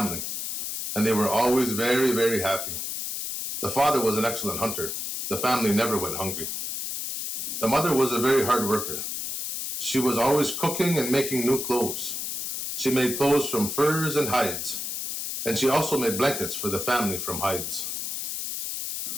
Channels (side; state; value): left; noise; hiss, 4 dB below the sound